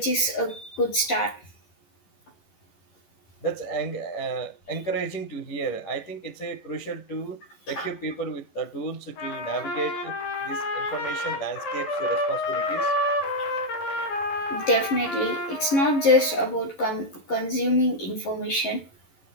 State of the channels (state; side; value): late; right; 11 ms